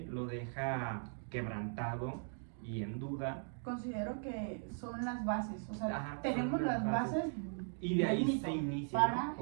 lo deja quebrantado y en duda, Considero que son las bases, o sea, Ajá, tenemos son las las bases y de ahí del mito se inicia, para ¿no?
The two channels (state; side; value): silent; left; 52 dB below the other